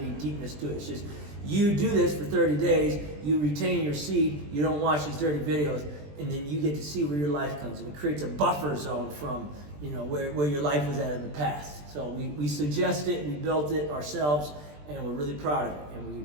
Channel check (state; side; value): late; left; 20 ms